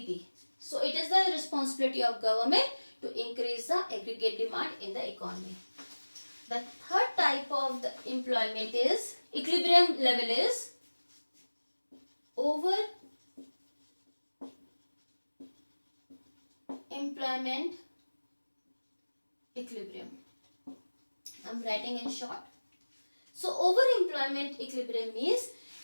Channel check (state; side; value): inverted; both; correlation -1.00